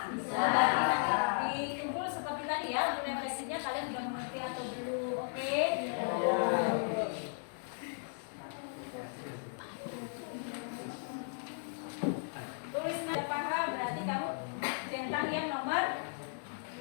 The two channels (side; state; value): right; silent; digital silence